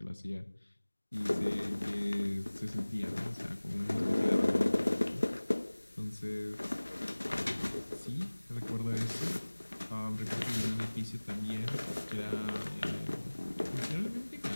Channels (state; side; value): inverted; both; correlation -1.00